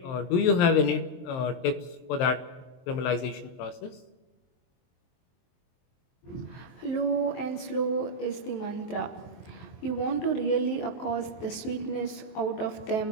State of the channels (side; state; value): right; late; 23 ms